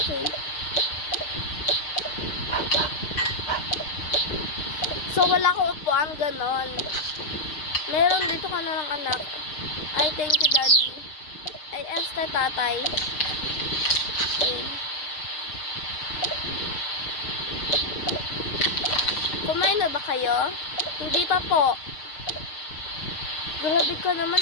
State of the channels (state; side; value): late; right; 6.4 ms